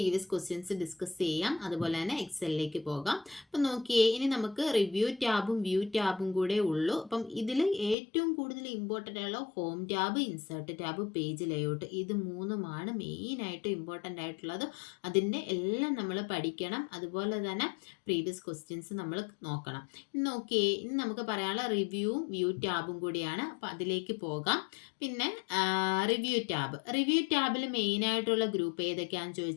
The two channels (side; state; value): right; drops out; at 8.0 s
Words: ക്വസ്റ്റ്യൻസ് ഡിസ്കസ് ചെയ്യാം. അതുപോലെ തന്നെ എക്സലിലേക്ക് പോകാം. അപ്പം നോക്കിയേ, ഇനി നമുക്ക് റിവ്യൂ ടാബും വ്യൂ ടാബും കൂടെ ഉള്ളൂ. അപ്പം ഇതിൽ ഏറ്റവും കൂടുതൽ ഇമ്പോർട്ടൻ്റ് ആയുള്ള home tab, insert tab, page layout, ഇത് മൂന്നുമാണ് മെയിനായിട്ട് ഇമ്പോർട്ടൻ്റ് ആയിട്ടുള്ളത്. അതിൻ്റെ എല്ലാം നമ്മൾ പഠിക്കണം. അതുപോലെ തന്നെ പ്രീവിയസ് ക്വസ്റ്റ്യൻസ് നമ്മൾ നോക്കണം. നോക്കിയേ, ഇനി നമുക്ക് പറയാനുള്ള റിവ്യൂവും വ്യൂ ടാബും കൂടിയാണ്. അപ്പം അതിലേക്ക് പോകാം. പിന്നെ റിവ്യൂ ടാബിൽ മെയിനായിട്ടുള്ള ഗ്രൂപ്പ് ഏതൊക്കെയാണെന്ന്